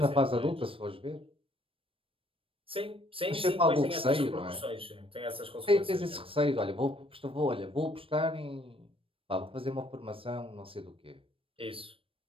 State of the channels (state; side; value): late; left; 0.26 ms